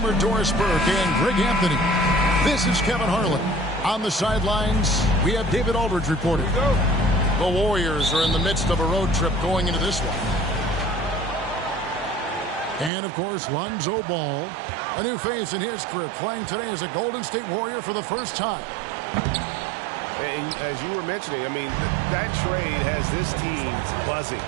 Doris Burke and Greg Anthony. This is Kevin Harlan. On the sidelines, we have David Aldridge reporting. The Warriors are in the midst of a road trip going into this one. And, of course, Lonzo Ball, a new face in his career, playing today as a Golden State Warrior for the first time. And as you were mentioning, I mean, that trade has this team buzzing.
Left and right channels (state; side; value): drops out; left; at 12.9 s